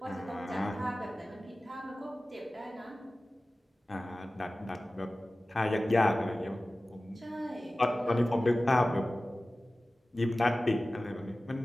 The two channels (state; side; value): normal; both; correlation 0.97